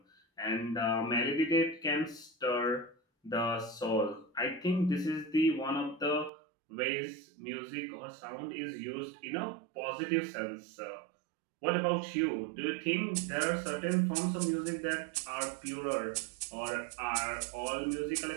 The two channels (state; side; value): drops out; left; at 6.3 s